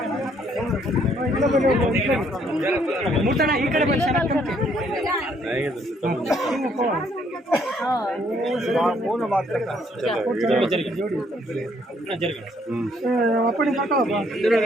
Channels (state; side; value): normal; both; correlation 0.67